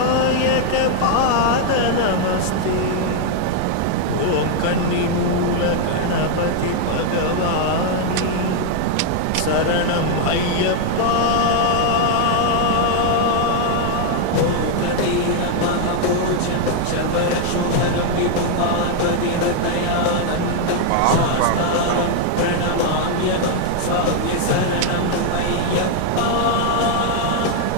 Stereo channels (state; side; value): different; both; correlation 0.00